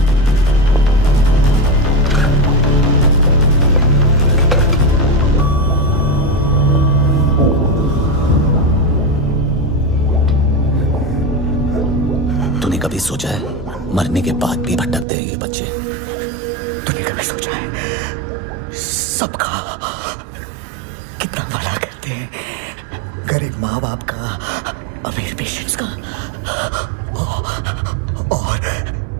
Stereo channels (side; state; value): left; drops out; at 15.1 s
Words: तूने कभी सोचा है मरने के बाद भी भटकते हैं ये बच्चे? तूने कभी सोचा है सबका कितना भला करते हैं? गरीब माँ बाप का, अमीर पेशेंट्स का, और